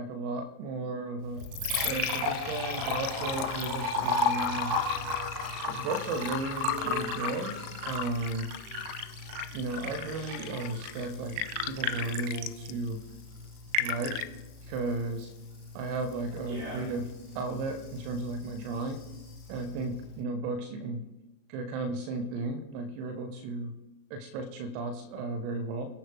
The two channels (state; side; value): late; left; 37 ms